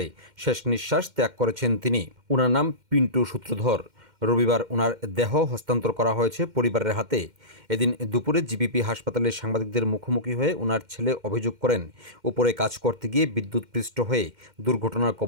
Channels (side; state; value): left; late; 2.1 ms